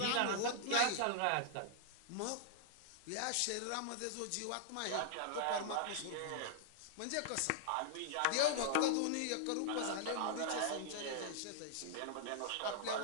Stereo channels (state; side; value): different; both; correlation -0.01